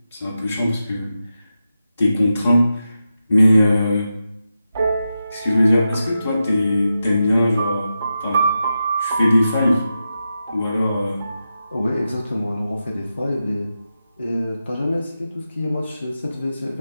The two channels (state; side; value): inverted; both; correlation -0.89